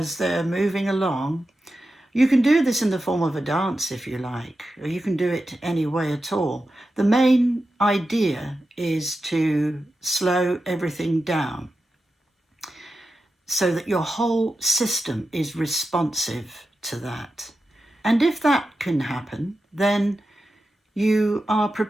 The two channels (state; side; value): normal; both; correlation 0.91